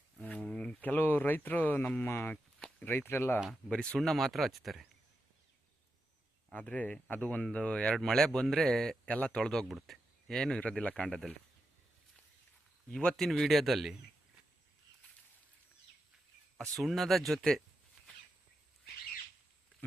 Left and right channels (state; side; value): normal; both; correlation 0.87